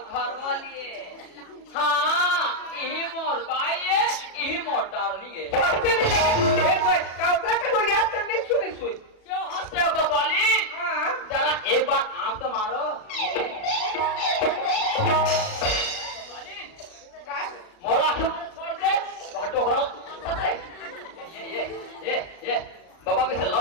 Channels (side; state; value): right; late; 36 ms